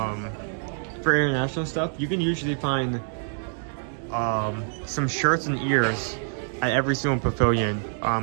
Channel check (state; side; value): silent; left; 57 dB below the other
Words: international stuff. You can usually find some shirts and ears at every single pavilion